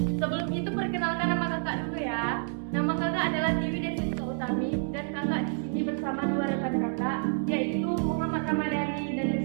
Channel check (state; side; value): silent; left; 59 dB below the other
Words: Sebelum itu perkenalkan nama kakak dulu ya. Nama kakak adalah Dewi Desisa Utami dan kakak di sini bersama dua rekan kakak, yaitu Muhammad Ramadhani dan